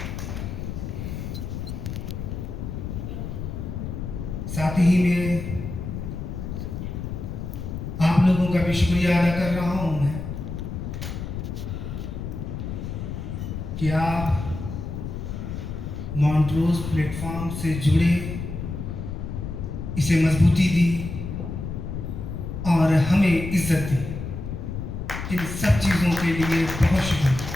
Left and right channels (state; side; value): noise; left; rumble, 6 dB below the sound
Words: साथ ही में आप लोगों का भी शुक्रिया अदा कर रहा हूं मैं कि आप मॉन्ट्रोज प्लेटफॉर्म से जुड़े, इसे मजबूती दी और हमें इज्जत दी। इन सब चीज़ों के लिए बहुत शुक्रिया।